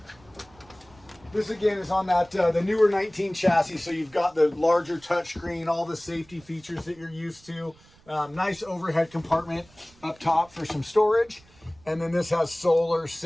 This again is on that the newer 19 chassis, so you've got the larger touchscreen, all the safety features that you're used to. Nice overhead compartment up top for some storage. And then this has solar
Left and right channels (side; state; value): right; noise; rumble, 28 dB below the sound